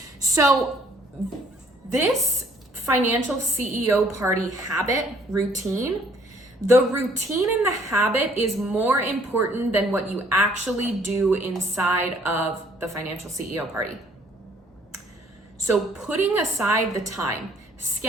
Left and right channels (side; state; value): both; normal; correlation 0.61